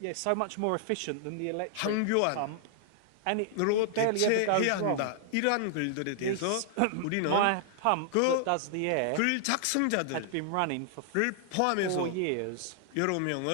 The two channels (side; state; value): both; different; correlation -0.01